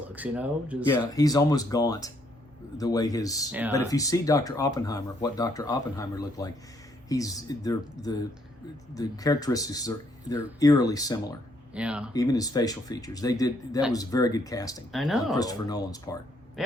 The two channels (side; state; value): both; normal; correlation 0.70